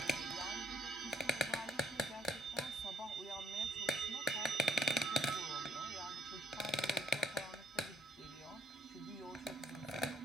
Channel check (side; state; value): both; normal; correlation 0.66